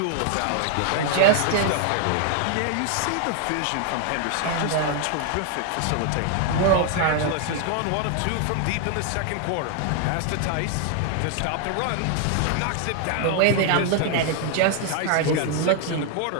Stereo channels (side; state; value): both; different; correlation 0.00